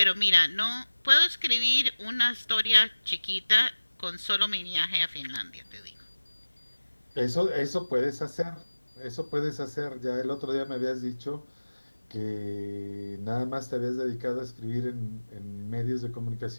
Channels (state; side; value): inverted; both; correlation -1.00